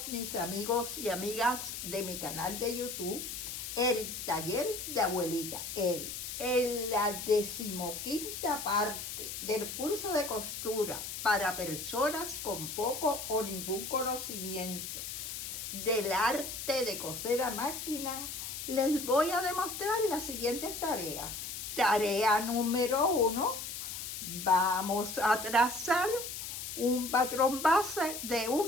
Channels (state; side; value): noise; left; hiss, 6 dB below the sound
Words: mis amigos y amigas de mi canal de YouTube, El Taller de Abuelita Edi. En la 15ª parte del curso de costura para personas con poco o ningún conocimiento del arte de coser a máquina, les voy a demostrar las siguientes tareas. Tarea número 1, vamos a trazar un patrón base de